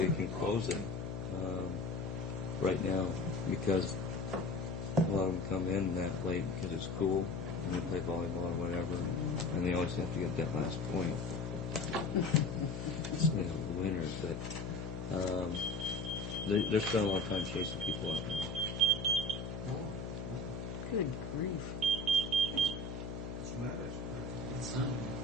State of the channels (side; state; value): left; noise; hum, 6 dB below the sound